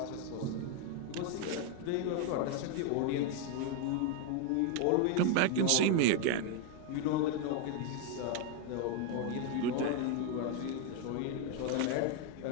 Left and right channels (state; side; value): different; both; correlation 0.01